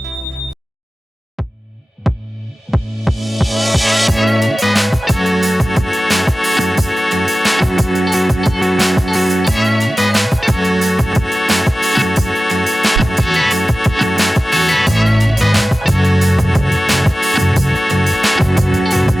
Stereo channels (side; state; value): both; normal; correlation 0.95